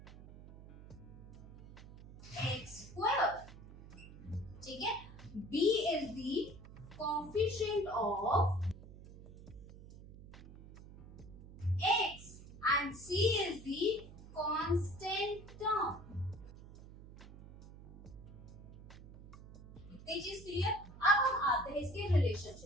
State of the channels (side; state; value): right; noise; hum, 17 dB below the sound